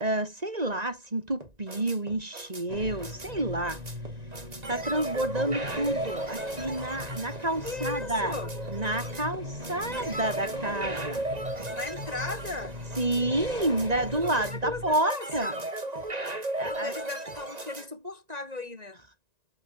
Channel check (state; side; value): late; left; 1.9 ms